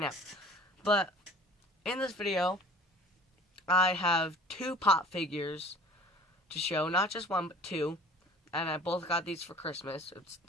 now. But, in this video, I have two pop figures to show. Not just one, but two. And I both got these for Christmas. It's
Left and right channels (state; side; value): normal; both; correlation 0.47